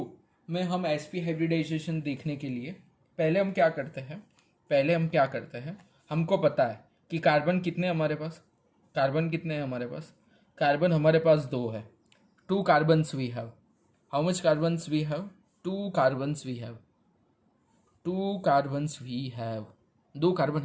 में हम sp हाइब्रिडाइजेशन देखने के लिए पहले हम क्या करते हैं, हमको पता है कि कार्बन कितने हैं हमारे पास। कार्बन हमारे पास 2 है। 2 carbons we have. How much carbons we have? 2 carbons we have. 2 carbon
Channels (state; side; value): identical; both; correlation 1.00